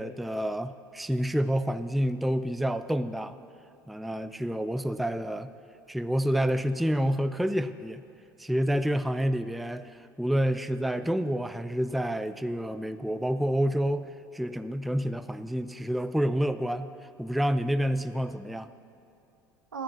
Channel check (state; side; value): normal; both; correlation 0.95